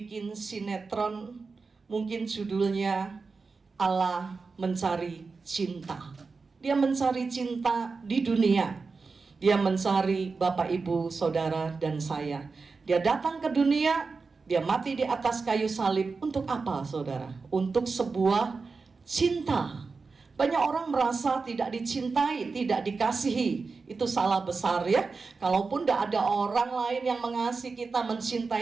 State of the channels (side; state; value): left; quieter; 4.4 dB